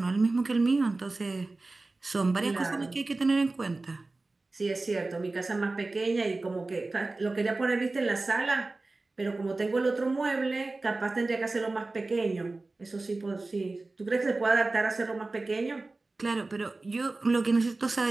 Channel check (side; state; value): left; quieter; 3.3 dB